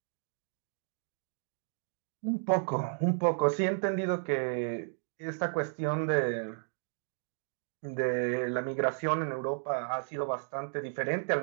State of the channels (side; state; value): left; silent; digital silence